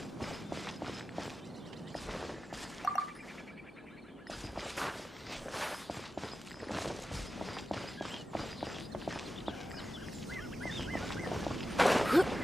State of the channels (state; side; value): normal; both; correlation 0.93